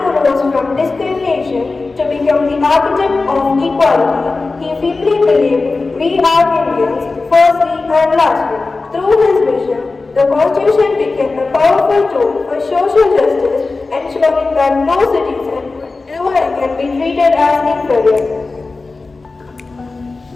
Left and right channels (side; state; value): right; quieter; 3.7 dB